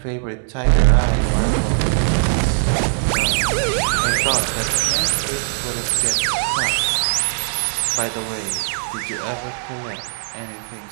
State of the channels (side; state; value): left; silent; digital silence